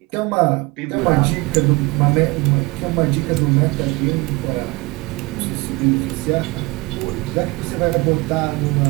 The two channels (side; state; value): left; quieter; 24.1 dB